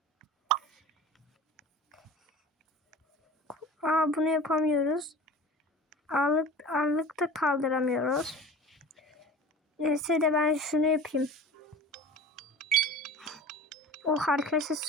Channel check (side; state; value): both; normal; correlation 0.38